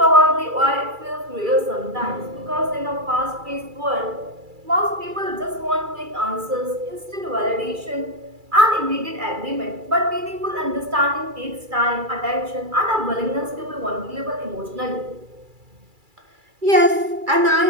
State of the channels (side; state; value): left; late; 2.3 ms